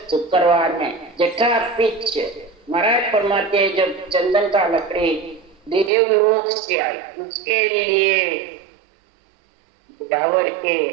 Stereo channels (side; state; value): left; drops out; at 5.9 s